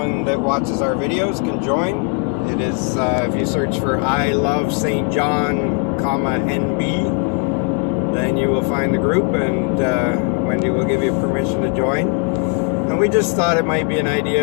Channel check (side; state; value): right; quieter; 33.0 dB